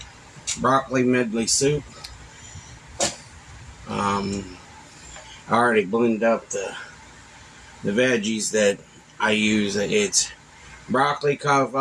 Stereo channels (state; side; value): identical; both; correlation 1.00